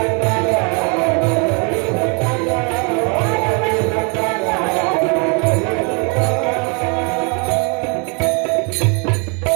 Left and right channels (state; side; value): quieter; left; 34.6 dB